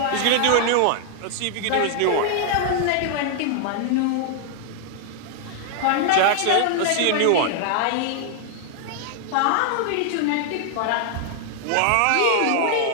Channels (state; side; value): different; both; correlation 0.00